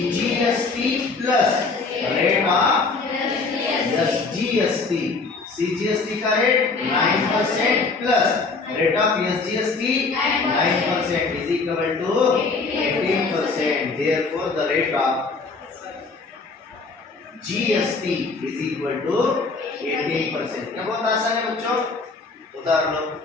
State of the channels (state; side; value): quieter; right; 4.1 dB